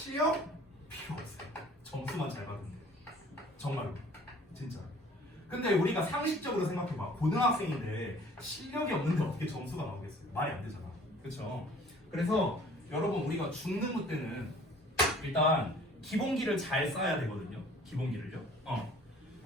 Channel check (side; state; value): both; normal; correlation 0.52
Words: 필요 없어요. 점수만 잘 받으면 돼요. 정말로 진짜. 근데 우리가 상식적으로 생각해봐. 고등학생인데 실력이 없는데 어떻게 점수가 나오겠어요? 말이 안 되잖아. 그렇죠? 그래서 여러분 우리가 중등부 때는 일단 기본기를 잘 쌓아야 되거든요. 기본기를요.